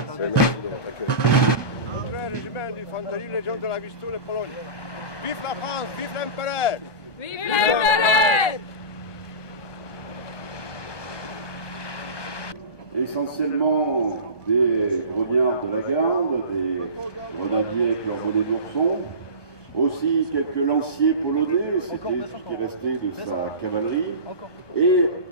Merci de votre accueil. André, régiment d'infanterie, Légion de la Vistule, Pologne. Vive la France, vive l'Empereur! Vive l'Empereur! Essentiellement des grognards de la garde, des grenadiers avec leur bonnet d'ourson, aussi quelques lanciers polonais, c'était ce qui restait de sa cavalerie, et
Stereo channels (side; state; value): right; late; 1.2 ms